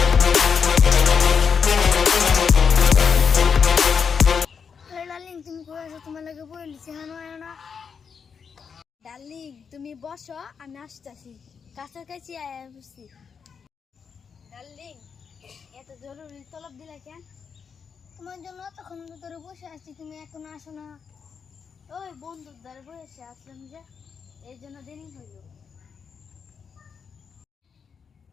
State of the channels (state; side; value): quieter; right; 6.3 dB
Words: ডার্লিং তুমি কোথায় আছো? তোমার লাগে বলেছি হানো আয় না। ডার্লিং তুমি বসো, আমি আসতেছি। কাছাকাছি আয়া বসছি। ডার্লিং এত জরুরি তলব দিলা কেন? তোমার জন্য তখন ধরে বসে আছি, তুমি এখন আসো না। ওই বন্ধুর দ্বারা বসে আসলাম যে, এই জন্য দেরি হইল।